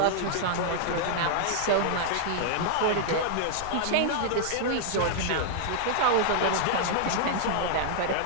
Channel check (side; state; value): both; different; correlation -0.01